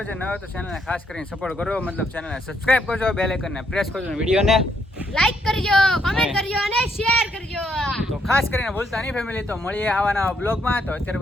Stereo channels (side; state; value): both; normal; correlation 0.74